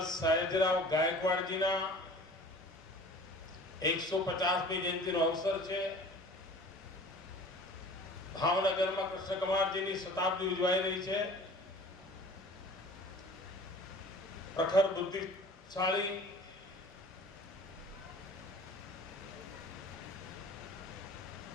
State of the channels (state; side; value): normal; both; correlation 0.45